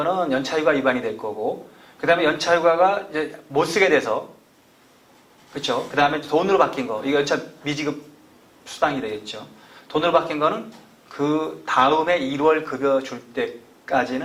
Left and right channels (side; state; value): both; identical; correlation 1.00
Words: 연차휴가 위반이 될 거고, 그 다음에 연차휴가가 이제 못 쓰게 돼서, 그렇죠? 그 다음에 돈으로 바뀐 거, 이거 연차 미지급 수당이 되겠죠. 돈으로 바뀐 거는 그 다음에 1월 급여 줄